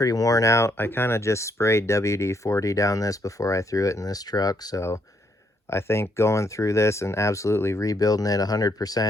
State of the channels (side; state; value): both; normal; correlation 0.73